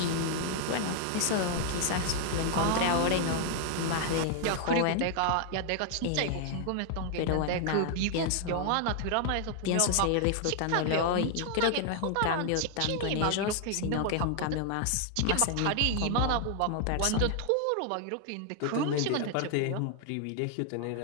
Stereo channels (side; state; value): both; different; correlation 0.00